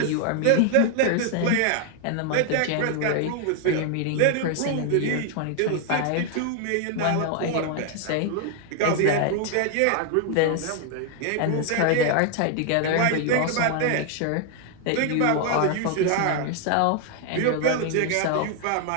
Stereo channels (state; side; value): different; both; correlation 0.00